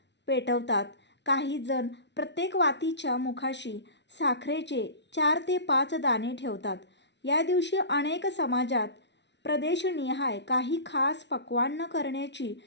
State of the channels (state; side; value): late; right; 0.51 ms